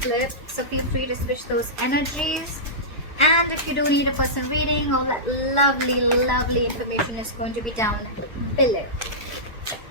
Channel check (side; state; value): both; normal; correlation -0.15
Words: so feel free to switch those energies. And if you do need a personal reading, all that lovely information is going to be down below.